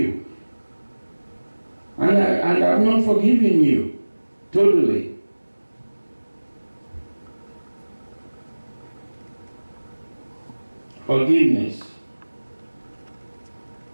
And I've not forgiven you totally. Forgiveness.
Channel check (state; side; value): inverted; both; correlation -1.00